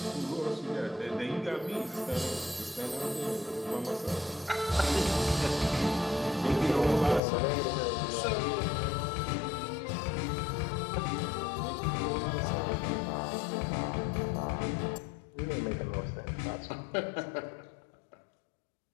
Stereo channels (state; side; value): drops out; right; at 7.2 s